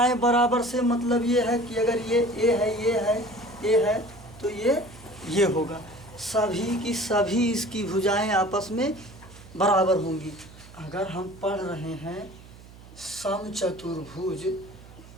बराबर से मतलब ये है कि अगर ये A है, ये है, A है, तो ये होगा। सभी की सभी इसकी भुजाएं आपस में बराबर होंगी। अगर हम पढ़ रहे हैं समचतुर्भुज,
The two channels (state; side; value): noise; right; hum, 20 dB below the sound